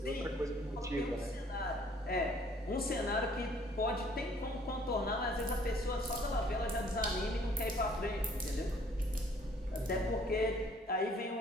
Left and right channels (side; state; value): both; normal; correlation 0.59